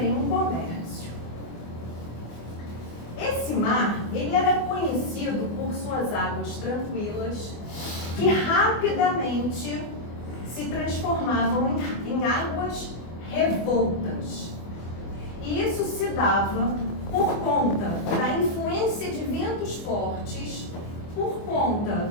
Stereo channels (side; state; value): right; late; 25 ms